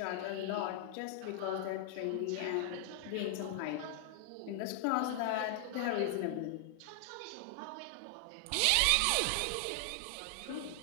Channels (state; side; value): different; both; correlation 0.00